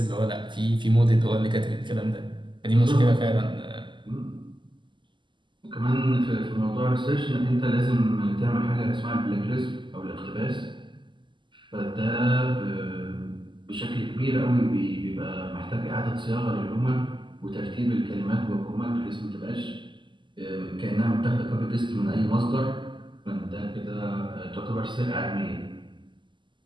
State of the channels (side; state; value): left; late; 0.23 ms